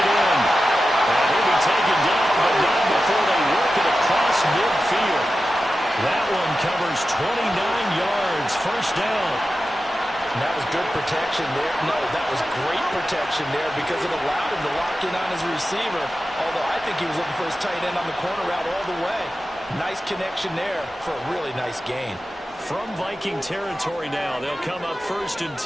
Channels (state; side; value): normal; both; correlation 0.93